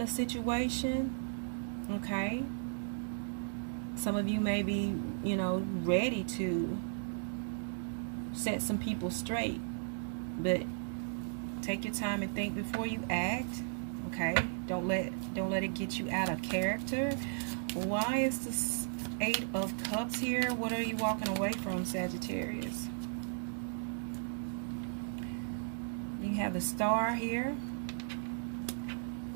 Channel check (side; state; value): left; silent; digital silence